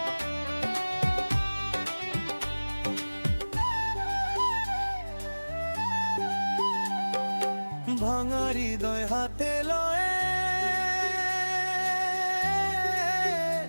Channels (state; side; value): inverted; both; correlation -1.00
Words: ভাঙা হৃদয় হাতে লয়ে